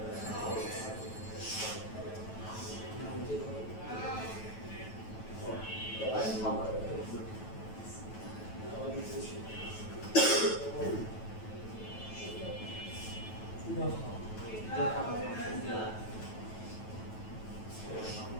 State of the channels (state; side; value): late; right; 9.2 ms